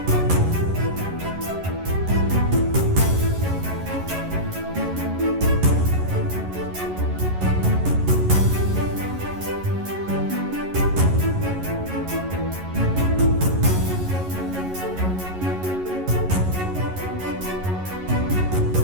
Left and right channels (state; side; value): late; left; 11 ms